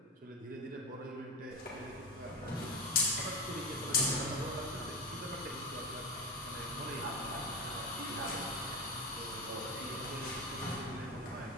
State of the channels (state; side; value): normal; both; correlation 0.19